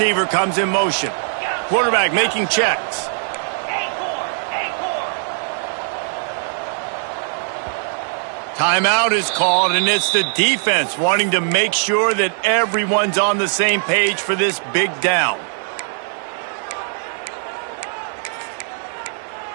comes in motion. Quarterback making checks. Timeout is called, and it's the defense wanting to make sure that everyone's on the same page for this big down.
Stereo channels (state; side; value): silent; left; 66 dB below the other